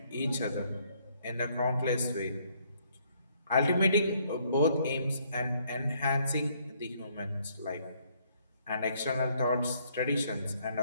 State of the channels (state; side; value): inverted; both; correlation -0.67